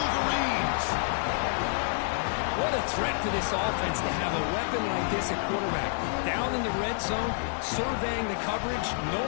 What a threat for this offense to have a weapon like this at quarterback. Down in the red zone, surveying the coverage,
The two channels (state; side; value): silent; right; digital silence